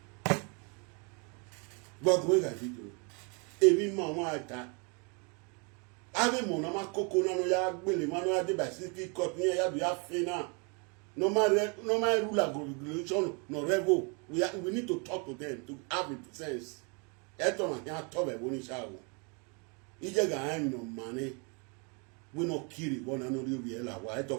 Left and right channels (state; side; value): quieter; left; 33.9 dB